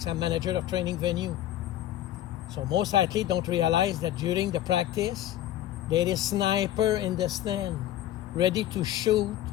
I'm manager of training venue. So most athletes don't realize that during the practice, there is sniper in the stand, ready to shoot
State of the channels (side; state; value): right; quieter; 12.8 dB